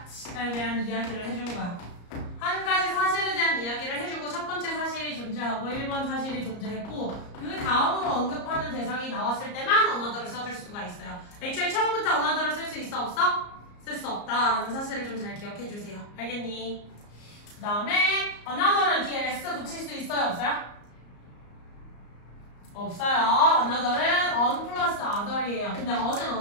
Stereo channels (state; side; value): late; right; 34 ms